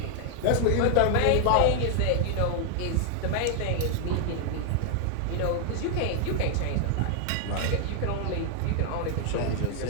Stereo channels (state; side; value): different; both; correlation 0.00